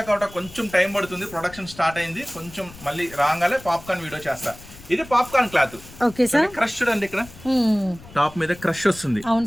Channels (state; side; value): noise; left; rumble, 19 dB below the sound